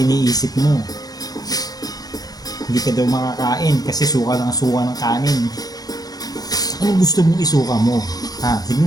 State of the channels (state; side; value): late; right; 0.19 ms